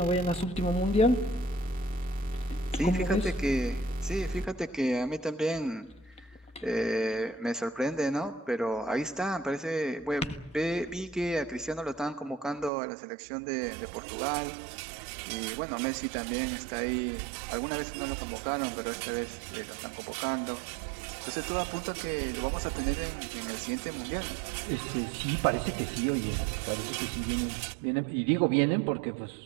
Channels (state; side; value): drops out; left; at 12.7 s